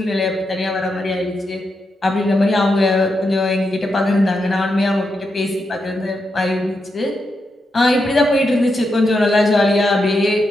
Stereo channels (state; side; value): normal; both; correlation 0.85